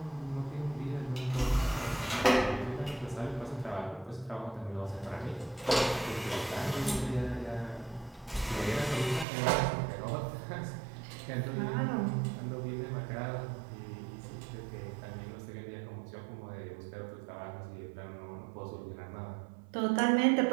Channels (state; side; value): drops out; left; at 9.2 s